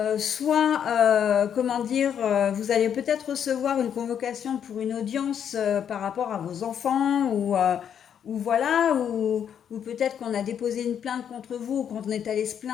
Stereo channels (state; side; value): quieter; right; 8.6 dB